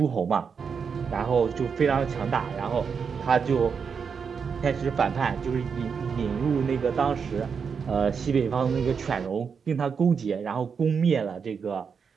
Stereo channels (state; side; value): quieter; left; 6.2 dB